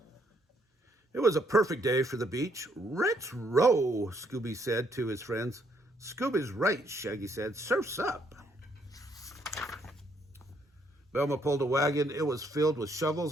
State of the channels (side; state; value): both; normal; correlation 0.71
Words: It was a perfect day for the beach. "Let's row," Scooby said to his friends. "Scooby's right," Shaggy said. "Surf's up." Velma pulled a wagon. It was filled with shovels